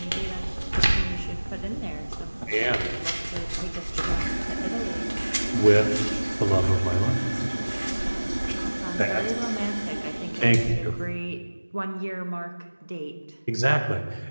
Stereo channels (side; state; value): both; inverted; correlation -1.00